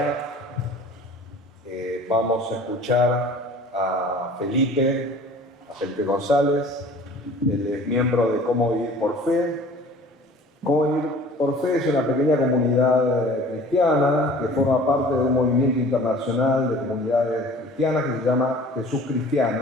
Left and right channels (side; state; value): both; normal; correlation 0.47